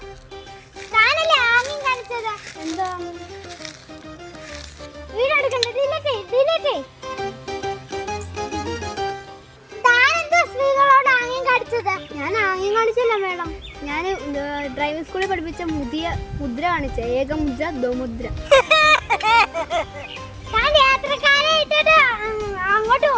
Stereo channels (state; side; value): identical; both; correlation 1.00